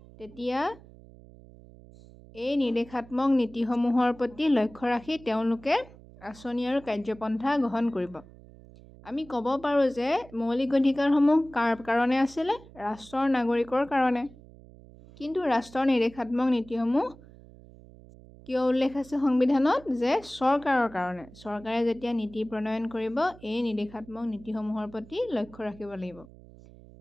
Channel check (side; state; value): right; noise; hum, 21 dB below the sound